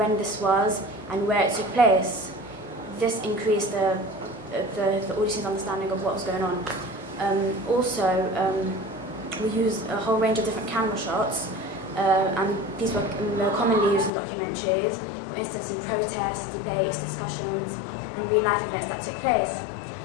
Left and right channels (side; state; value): right; drops out; at 14.1 s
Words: this was and where it took place. This increased the audience's understanding of what was going on. We used a whole range of different camera shots, and these were commonly used in documentaries, for instance in protests, debates, discussions and real-life events that took place.